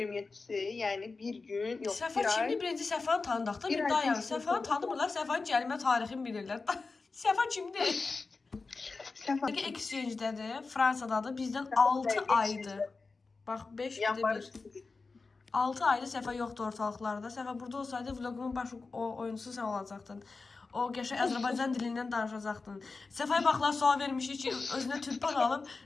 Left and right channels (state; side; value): quieter; right; 4.1 dB